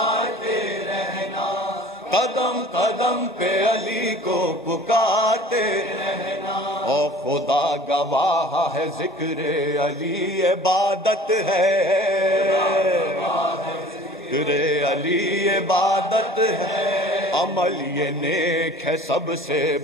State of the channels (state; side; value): normal; both; correlation 0.46